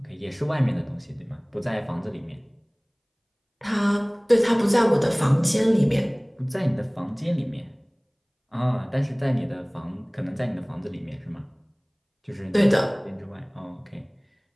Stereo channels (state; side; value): identical; both; correlation 1.00